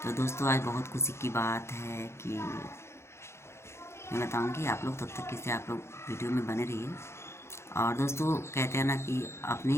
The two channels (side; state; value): right; late; 0.13 ms